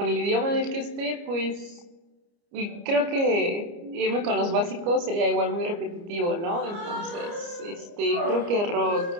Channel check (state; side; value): late; left; 29 ms